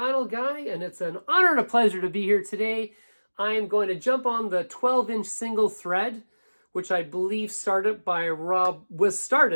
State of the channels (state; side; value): inverted; both; correlation -1.00